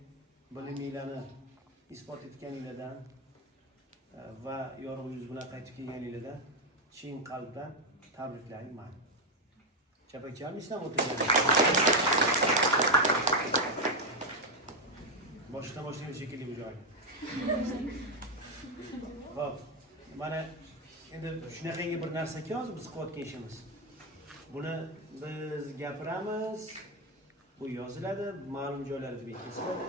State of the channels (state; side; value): normal; both; correlation 0.04